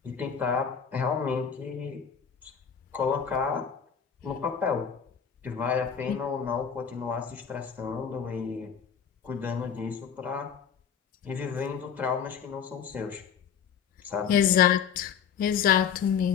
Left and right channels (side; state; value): right; quieter; 7.4 dB